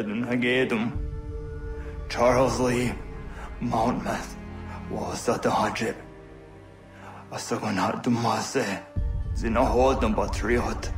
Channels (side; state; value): both; identical; correlation 1.00